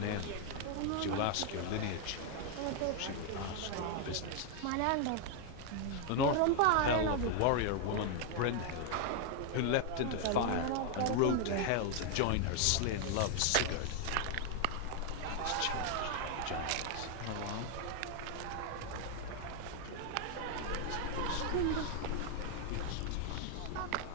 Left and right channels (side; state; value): both; different; correlation 0.00